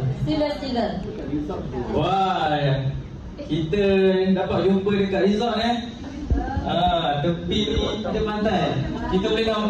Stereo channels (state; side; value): identical; both; correlation 1.00